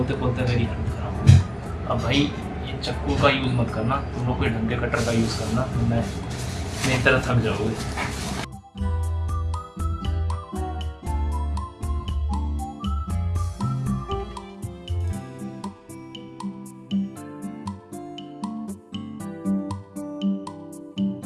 खोलते मेरी हालत खराब हो गई। अब भाई ये चक्कू का यूज़ मत करना, तुम लोग कोई ढंग के कटर का यूज़ करना, तो मैं मेरी तरह थक जाओगे।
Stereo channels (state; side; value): identical; both; correlation 1.00